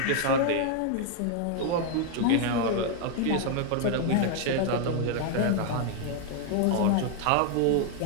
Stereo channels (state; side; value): different; both; correlation 0.00